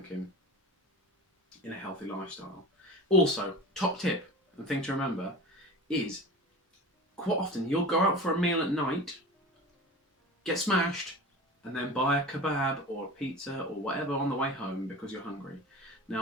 in a healthy lifestyle. Also, top tip and thing to remember is quite often you'll go out for a meal at night, get smashed, and then buy a kebab or a pizza or whatever on the way home because you're hungry.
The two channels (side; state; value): both; normal; correlation 0.34